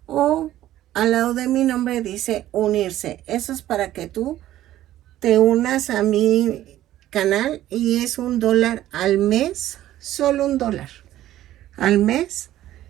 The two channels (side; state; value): left; quieter; 13.6 dB